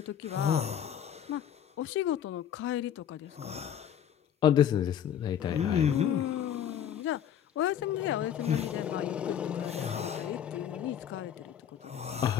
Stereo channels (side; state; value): right; quieter; 9.5 dB